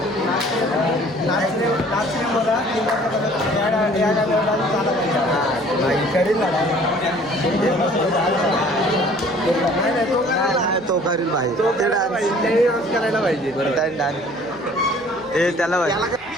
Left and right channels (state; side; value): noise; left; hum, 27 dB below the sound